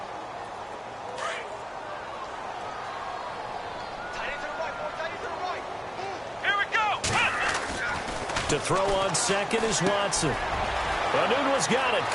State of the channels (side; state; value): both; identical; correlation 1.00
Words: Tight end to the right, To throw on second is Watson. Anunwa's got it,